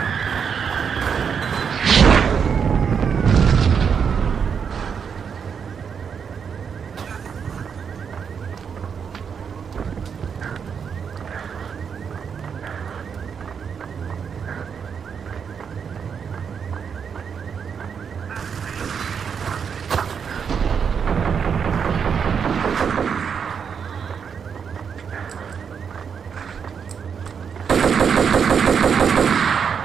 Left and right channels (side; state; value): left; quieter; 6.8 dB